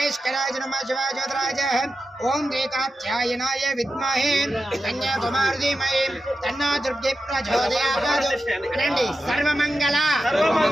नमः शिवाय ज्योतिराय ओम रेखाध्यायनाय विद्महे कन्याकुमारी धीमहि तन्नो दुर्गे प्रचोदयात् अनंడి सर्वमंगल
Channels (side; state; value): both; normal; correlation 0.91